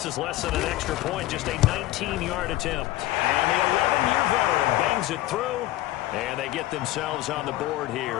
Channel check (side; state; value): right; quieter; 16.1 dB